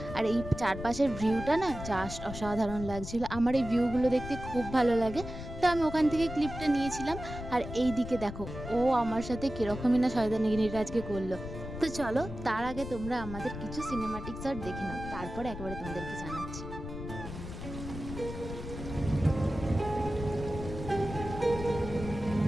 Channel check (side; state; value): left; noise; rumble, 9 dB below the sound